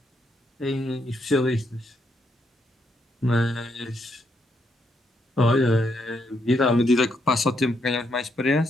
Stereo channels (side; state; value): both; normal; correlation 0.76